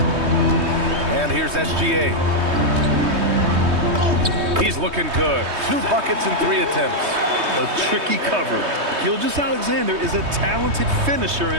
And here's SGA. He's looking good. 2 buckets in 3 attempts. A tricky cover. Gilgeous-Alexander is a talented finisher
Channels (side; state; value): left; late; 3.2 ms